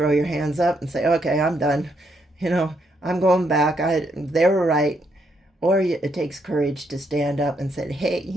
your hands up and say, okay, I'm done. I'm going back. They were right. Or it takes courage to stand up and say, hey,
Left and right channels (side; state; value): both; normal; correlation 0.76